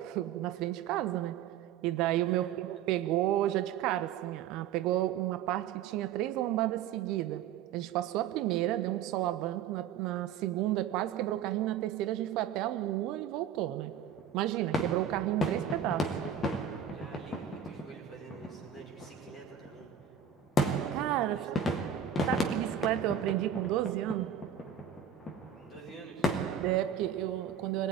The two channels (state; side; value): quieter; left; 8.0 dB